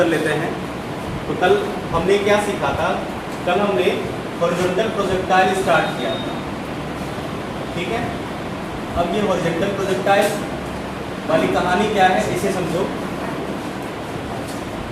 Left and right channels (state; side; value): identical; both; correlation 1.00